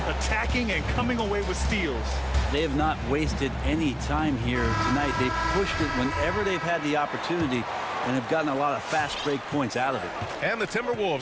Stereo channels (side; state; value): both; identical; correlation 1.00